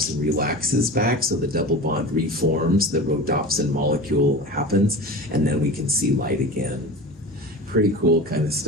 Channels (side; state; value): both; normal; correlation 0.33